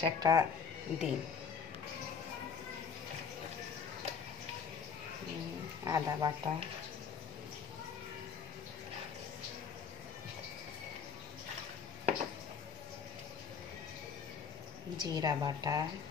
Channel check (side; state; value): right; quieter; 6.6 dB